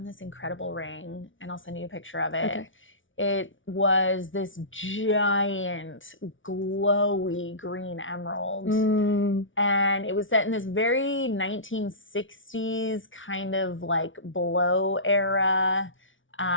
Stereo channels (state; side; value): late; right; 0.56 ms